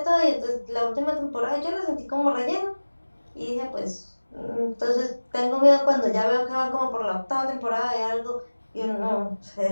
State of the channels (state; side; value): inverted; both; correlation -1.00